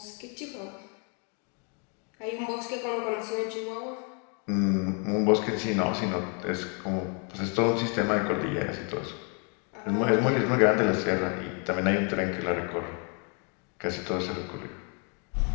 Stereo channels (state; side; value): quieter; right; 38.0 dB